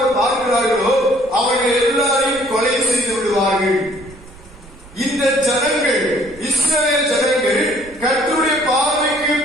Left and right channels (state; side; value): noise; right; rumble, 21 dB below the sound